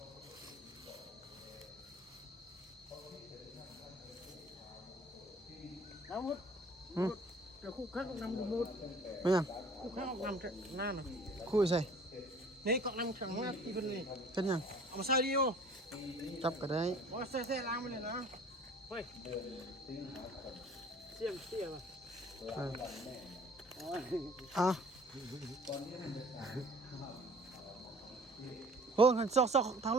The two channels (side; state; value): both; normal; correlation 0.50